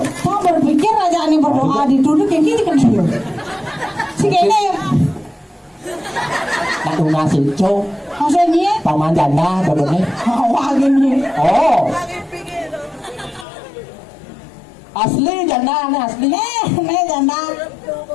Saya berpikir aja nih berdoa dituduh kayak gini kan dia. Si kayaknya ya. Nak nasi cow. Maksudnya? Paman janda benernya. Wah gini. Oh. Asli janda nih asli. Nih janda.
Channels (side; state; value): right; drops out; at 13.5 s